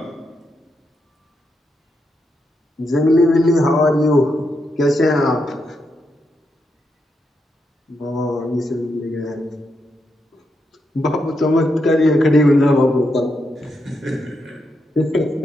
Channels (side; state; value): both; normal; correlation 0.83